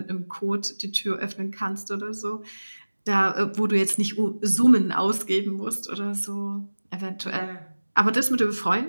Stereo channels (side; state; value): both; inverted; correlation -1.00